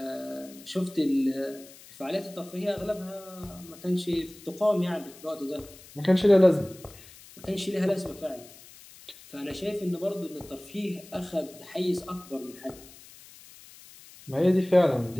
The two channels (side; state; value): left; noise; hiss, 20 dB below the sound